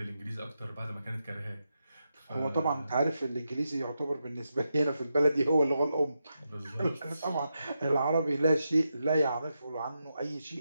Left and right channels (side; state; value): both; inverted; correlation -0.86